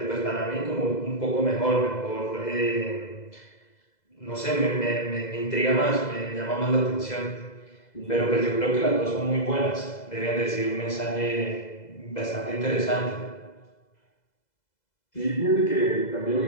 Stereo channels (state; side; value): late; right; 2.0 ms